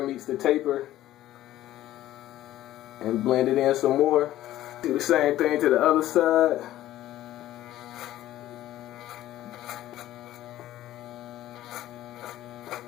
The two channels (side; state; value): right; quieter; 14.1 dB